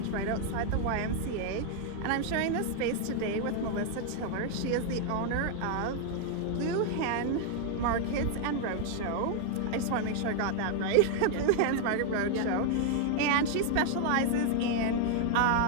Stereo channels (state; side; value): different; both; correlation 0.00